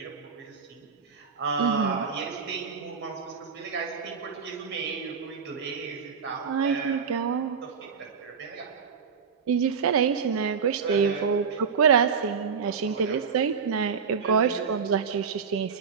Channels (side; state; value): left; quieter; 6.1 dB